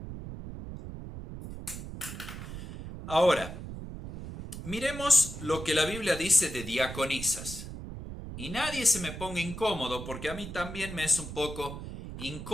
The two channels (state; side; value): noise; right; rumble, 9 dB below the sound